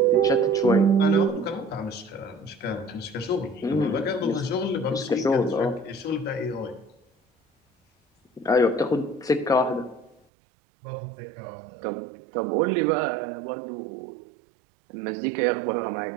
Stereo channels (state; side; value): drops out; left; at 10.2 s